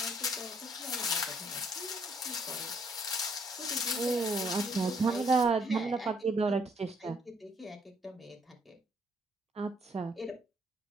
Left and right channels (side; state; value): both; normal; correlation 0.67